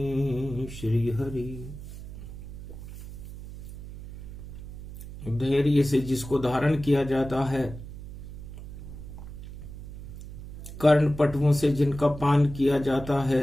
श्रीहरि। धैर्य से जिसको धारण किया जाता है, कर्ण पटुओं से जिनका पान किया जाता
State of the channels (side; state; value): right; noise; hum, 12 dB below the sound